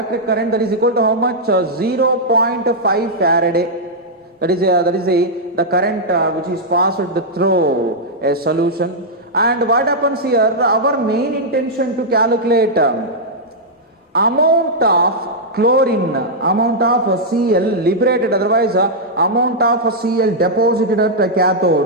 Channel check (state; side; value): normal; both; correlation -0.06